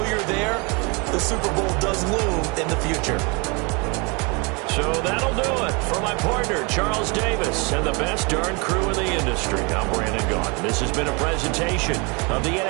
you're there, the Super Bowl does loom in the future. So that'll do it. For my partner, Charles Davis, and the best darn crew in the industry, I'm Brandon Gaudin. This has been a presentation of the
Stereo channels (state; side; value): quieter; left; 30.2 dB